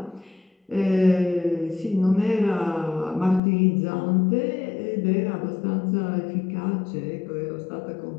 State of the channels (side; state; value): right; drops out; at 3.4 s